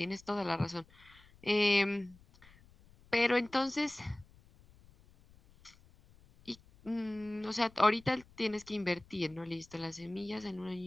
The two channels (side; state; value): left; noise; rumble, 26 dB below the sound